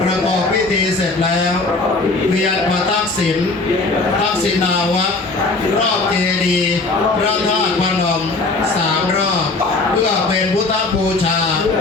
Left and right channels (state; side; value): quieter; right; 3.5 dB